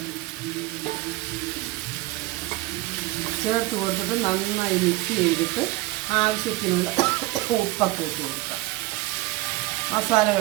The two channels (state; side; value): quieter; left; 19.3 dB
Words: ചേർത്ത് കൊടുത്തിട്ട് നന്നായി മിക്സ് ചെയ്തിട്ട് ആവശ്യത്തിനുള്ള ഉപ്പൊക്കെ ഇട്ട് കൊടുക്കാം.